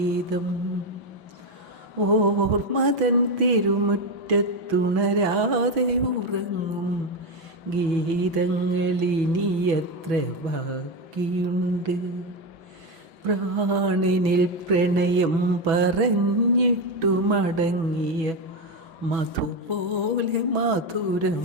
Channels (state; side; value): late; left; 6.1 ms